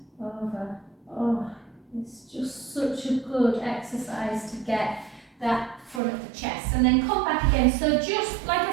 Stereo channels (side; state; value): left; drops out; at 6.0 s